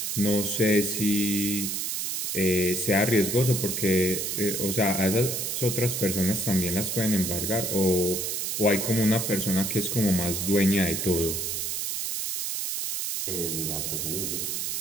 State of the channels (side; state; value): right; noise; hiss, 2 dB below the sound